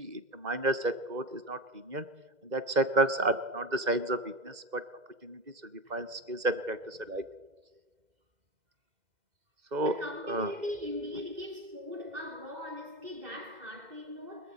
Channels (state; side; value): late; left; 2.0 ms